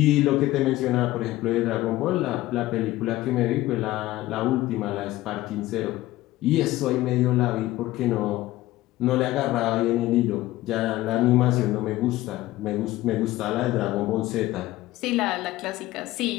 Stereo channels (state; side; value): quieter; right; 16.7 dB